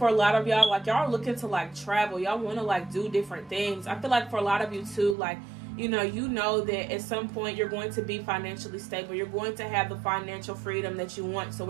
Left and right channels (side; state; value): left; drops out; at 5.2 s